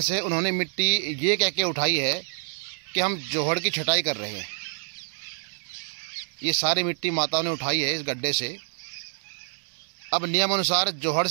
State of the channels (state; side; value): silent; left; 60 dB below the other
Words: से उन्होंने मिट्टी ये कह के उठाई है कि हम जोहड़ की छटाई कर रहे हैं। ये सारी मिट्टी माताओं ने उठाई है इस गड्ढे से। अब नियम अनुसार जोहड़